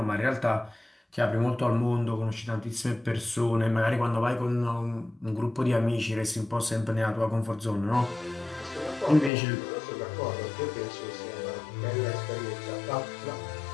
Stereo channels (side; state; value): right; drops out; at 9.3 s